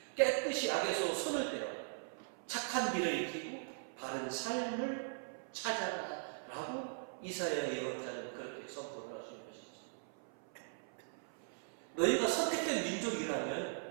깨끗이 악에서 손을 떼라, 착한 길을 익히고 바른 삶을 찾아라 라고 이사야 예언자는 그렇게 선포를 하시는 것이죠. 너희가 선택된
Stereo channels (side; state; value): left; silent; 51 dB below the other